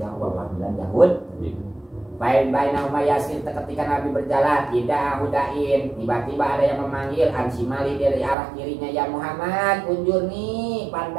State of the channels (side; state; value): left; drops out; at 8.3 s